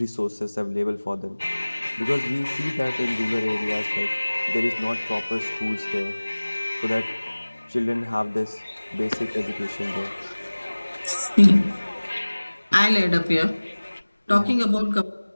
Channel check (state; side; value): inverted; both; correlation -1.00